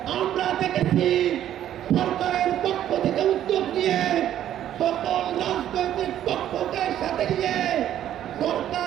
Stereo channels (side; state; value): left; quieter; 11.4 dB